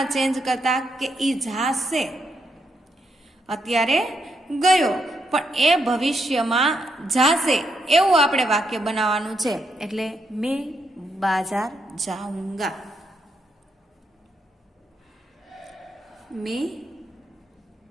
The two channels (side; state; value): both; normal; correlation 0.79